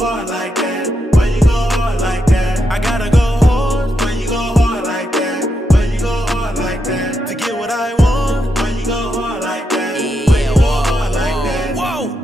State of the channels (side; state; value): both; normal; correlation 0.83